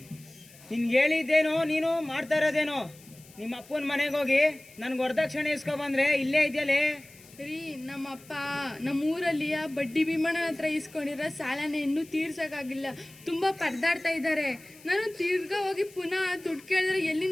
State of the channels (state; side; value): noise; left; hiss, 23 dB below the sound